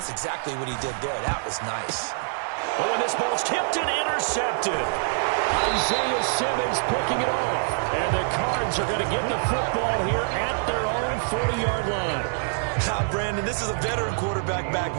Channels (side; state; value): left; silent; digital silence